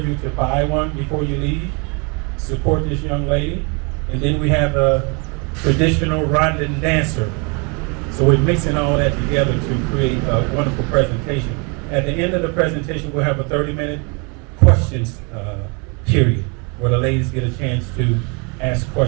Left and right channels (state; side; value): quieter; left; 32.4 dB